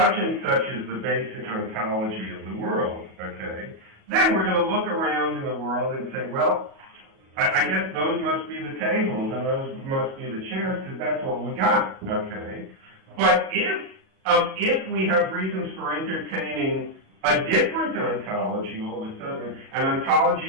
and such is the basic ontology of the world, okay, then we're going to look around in the world and say, well, I guess those must be the tables and those must be the chairs because that's what we got, okay? But if we have reasons for entertaining a different ontology all of a sudden, an ontology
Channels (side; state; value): left; late; 37 ms